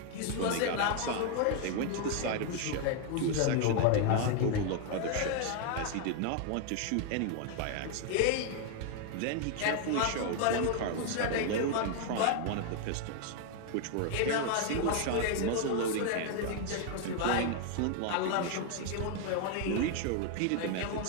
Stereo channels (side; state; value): both; different; correlation 0.00